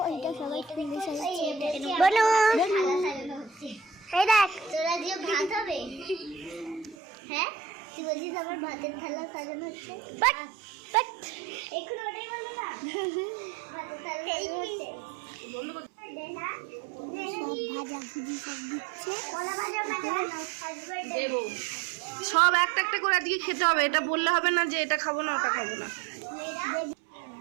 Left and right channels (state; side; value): drops out; left; at 7.0 s